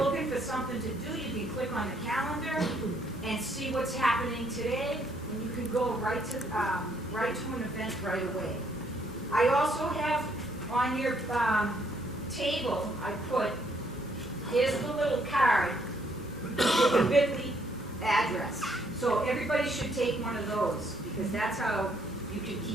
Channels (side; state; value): both; normal; correlation 0.69